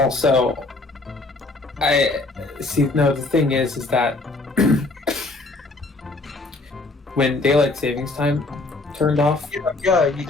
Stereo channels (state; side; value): quieter; right; 3.3 dB